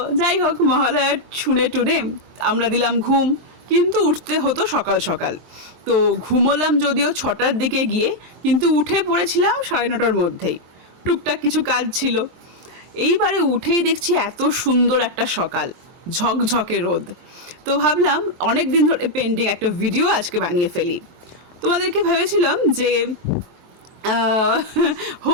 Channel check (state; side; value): late; left; 23 ms